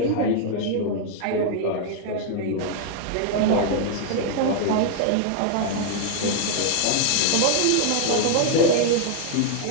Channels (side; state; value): both; different; correlation 0.00